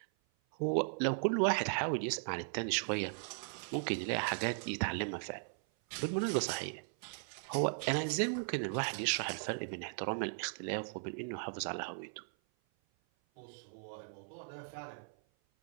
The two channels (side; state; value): left; silent; 53 dB below the other